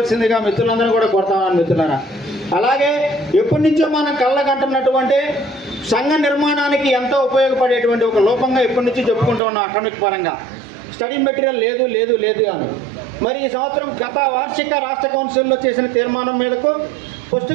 మిత్రులందరూ కూడా కోరుతామని మిత్రులారా. అలాగే ఎప్పటి నుంచో మనం కళ్ళగంటున్నటువంటి సంఘ నిర్మాణానికి ఎంతో ఉపయోగపడేటువంటి ఒక లోపంగా ఎప్పటి నుంచి చెప్పుకుంటూ ఉన్నాం అకాడమిక్ పరంగా, స్టడీ మెటీరియల్ లేదు లేదు లేదు అని. మరి ఈ సంవత్సరం గత వార్షిక రాష్ట్ర కౌన్సిల్లో చేసిన తీర్మానం మేరకు పుష్టి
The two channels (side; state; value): left; drops out; at 9.4 s